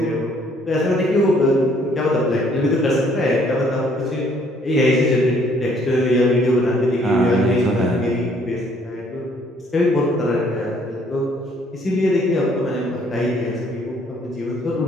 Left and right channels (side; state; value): both; normal; correlation 0.63